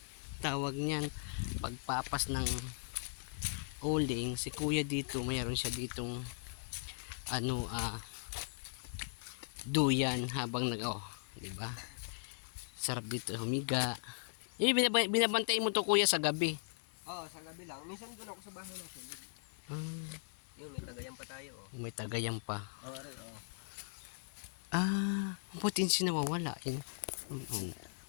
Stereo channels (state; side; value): silent; right; digital silence